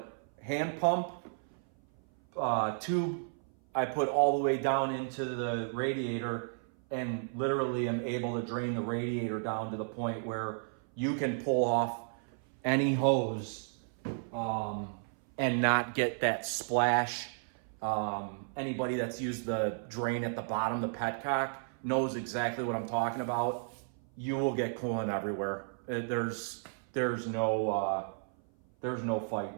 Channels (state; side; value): silent; left; 56 dB below the other